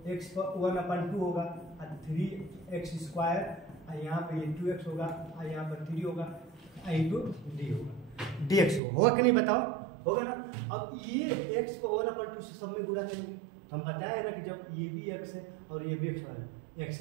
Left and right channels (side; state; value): left; drops out; at 8.8 s